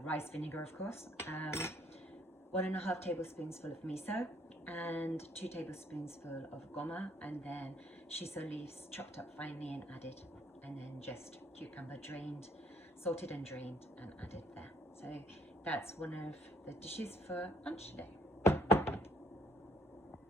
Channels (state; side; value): normal; both; correlation 0.64